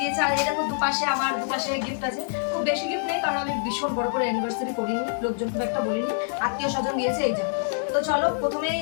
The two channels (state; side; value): silent; right; digital silence